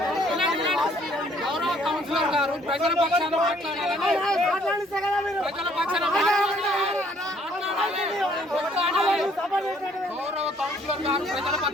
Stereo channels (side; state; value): both; normal; correlation 0.63